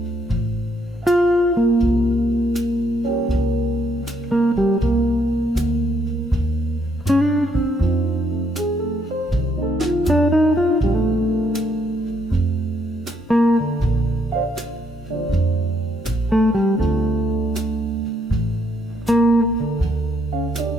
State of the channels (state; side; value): normal; both; correlation 0.72